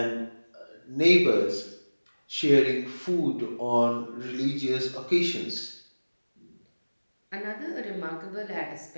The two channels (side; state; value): both; inverted; correlation -1.00